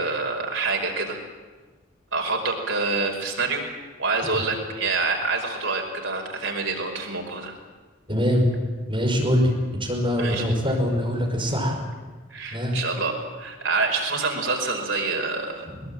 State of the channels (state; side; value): normal; both; correlation 0.29